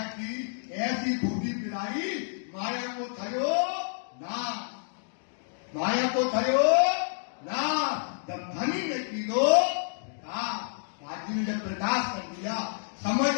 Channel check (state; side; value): silent; right; digital silence